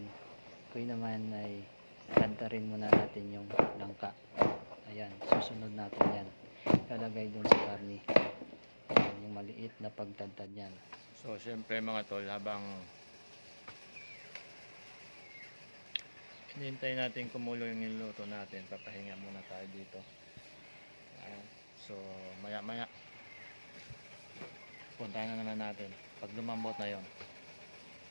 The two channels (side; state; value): both; inverted; correlation -1.00